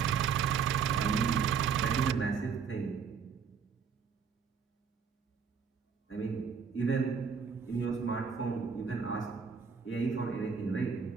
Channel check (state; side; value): quieter; left; 6.3 dB